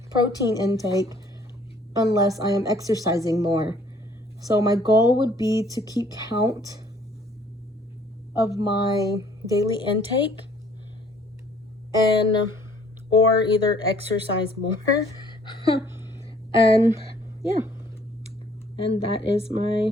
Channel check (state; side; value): normal; both; correlation 0.59